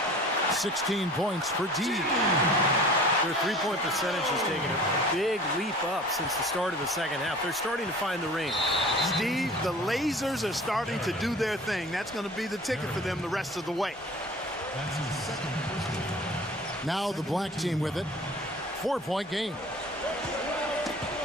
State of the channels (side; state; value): both; normal; correlation 0.44